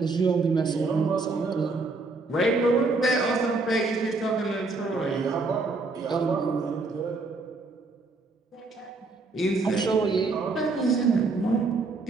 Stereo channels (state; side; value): quieter; left; 3.6 dB